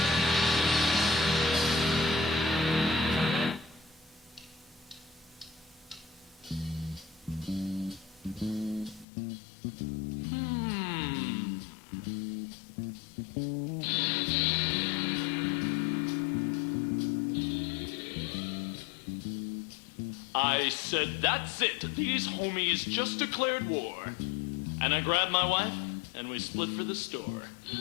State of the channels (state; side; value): drops out; right; at 9.1 s